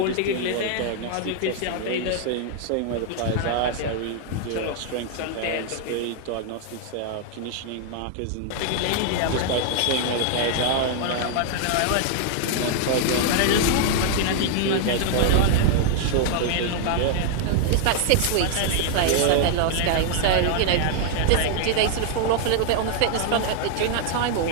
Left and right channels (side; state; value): both; different; correlation 0.00